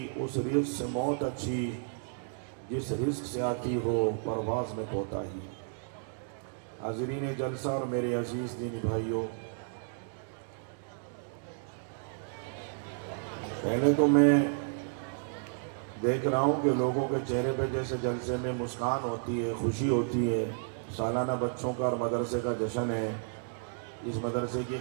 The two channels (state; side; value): silent; left; digital silence